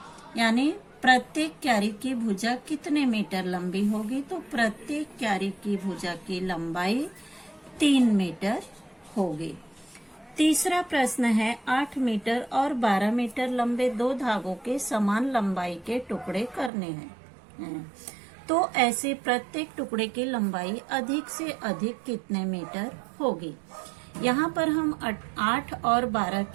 यानी प्रत्येक क्यारी की भुजा कितने मीटर लंबी होगी? तो प्रत्येक क्यारी की भुजा की लंबाई 3 मीटर होगी। तीसरा प्रश्न है 8 मीटर और 12 मीटर लंबे 2 धागों के समान लंबाई के टुकड़े करने हैं, तो ऐसे प्रत्येक टुकड़े की लंबाई अधिक से अधिक कितने मीटर होगी? यहाँ पर हम 8 और 12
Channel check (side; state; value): left; drops out; at 16.7 s